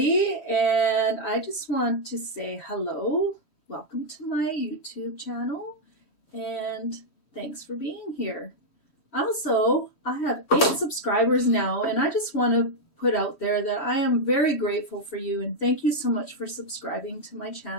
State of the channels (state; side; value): late; right; 3.1 ms